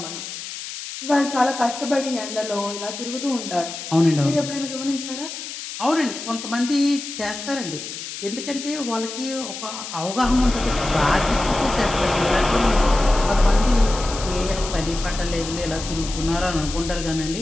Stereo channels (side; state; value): left; noise; hiss, 9 dB below the sound